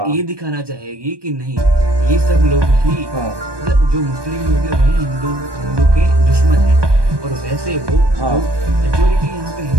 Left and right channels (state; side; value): late; left; 1.2 ms